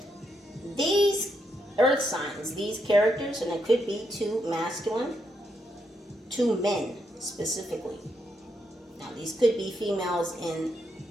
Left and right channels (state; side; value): normal; both; correlation 0.80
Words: These earth signs, these characters, and it could be two masculine, two men specifically. Now these could be females in